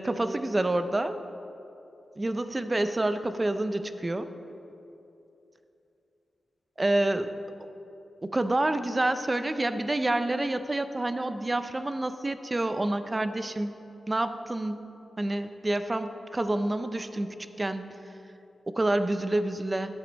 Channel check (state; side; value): normal; both; correlation 0.98